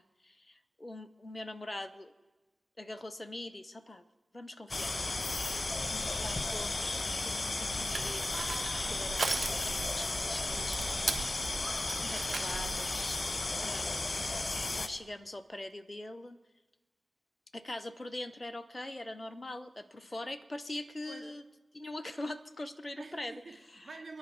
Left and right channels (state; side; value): normal; both; correlation 0.95